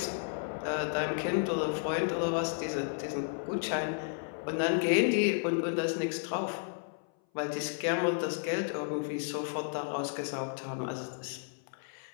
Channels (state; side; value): silent; right; 56 dB below the other